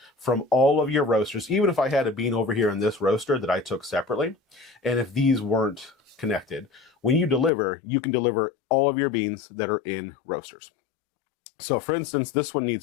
from all of your roasters, even if I had a bean over here in this roaster that I took separately. And if these weren't connected, when you deliver, you can deliver all of your beans that are in roasters. So for instance, this one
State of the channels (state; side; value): drops out; right; at 7.5 s